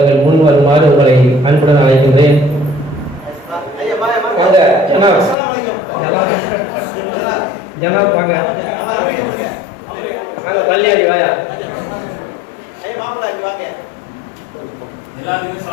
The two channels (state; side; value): drops out; right; at 5.4 s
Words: முன் வருமாறு உங்களை அன்புடன் அழைக்கின்றேன். ஜனாப் வாங்க. கல்யாணி வாயா. எல்லாத்துக்கும்